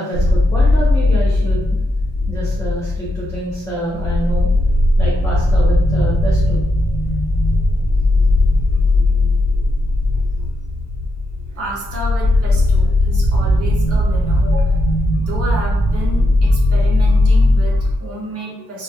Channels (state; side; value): normal; both; correlation 0.85